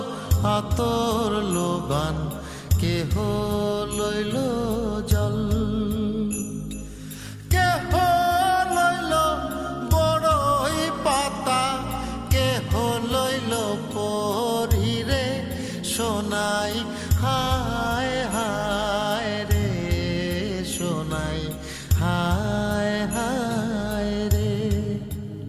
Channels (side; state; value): both; identical; correlation 1.00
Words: আতর লোবান, কেহ লইল জল, কেহ লইল বড়ই পাতা, কেহ লইল পরিরে সোনাই। হায় হায় রে সোনাই, হায় হায় রে,